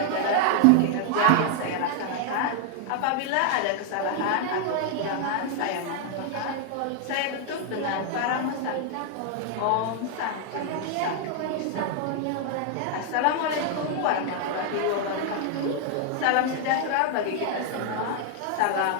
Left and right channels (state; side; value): different; both; correlation 0.00